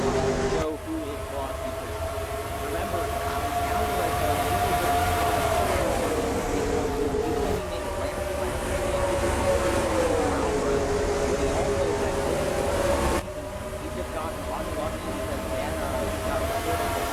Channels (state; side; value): identical; both; correlation 1.00